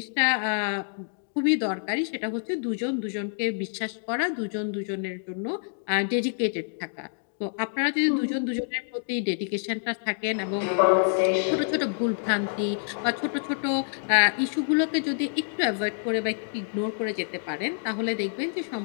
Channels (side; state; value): right; silent; digital silence